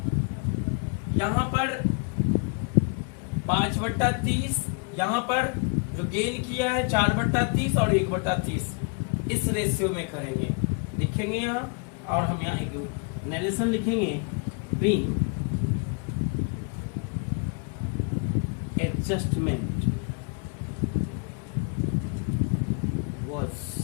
यहां पर 5/30, यहां पर जो गेन किया है 4/30 और 1/30, इस रेशियो में करेंगे। लिखेंगे यहाँ, और हम यहाँ एक नरेशन लिखेंगे, being adjustment was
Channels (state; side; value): quieter; right; 36.9 dB